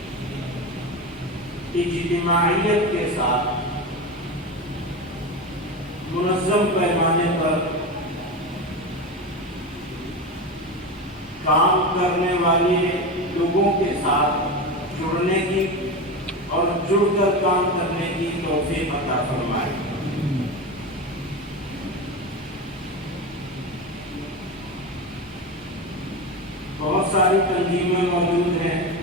اجتماعیت کے ساتھ منظم پیمانے پر کام کرنے والے لوگوں کے ساتھ جڑنے کی اور جڑ کر کام کرنے کی توفیق عطا فرمائے۔ بہت ساری تنظیمیں موجود ہیں،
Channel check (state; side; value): normal; both; correlation 0.21